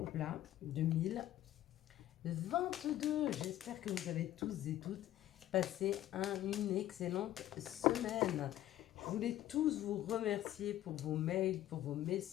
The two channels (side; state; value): right; quieter; 13.5 dB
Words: au plat 2022. J'espère que vous avez tous et toutes passé une excellente semaine. Je voulais tous vous remercier pour vos mails, pour vos